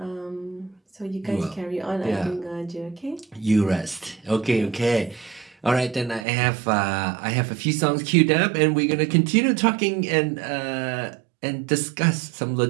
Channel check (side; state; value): left; drops out; at 6.2 s